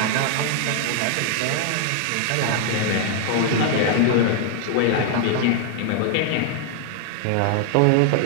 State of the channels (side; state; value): both; different; correlation 0.00